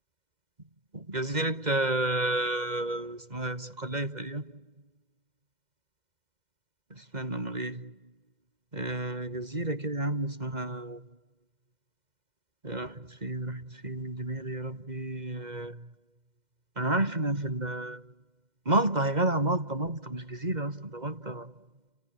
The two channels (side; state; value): left; late; 2.1 ms